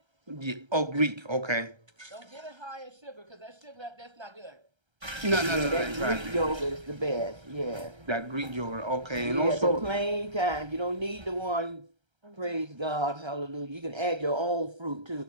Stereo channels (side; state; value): left; late; 1.3 ms